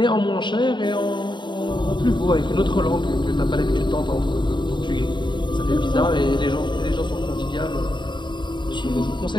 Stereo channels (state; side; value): late; right; 0.22 ms